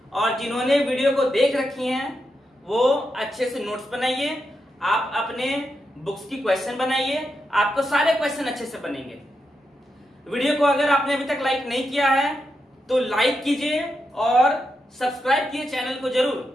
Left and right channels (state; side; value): normal; both; correlation 0.85